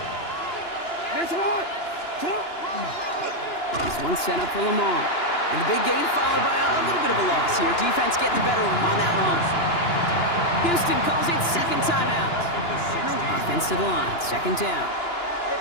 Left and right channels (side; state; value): right; late; 2.9 ms